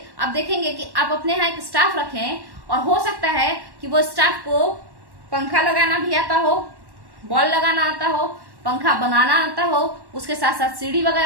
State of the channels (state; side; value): late; left; 1.1 ms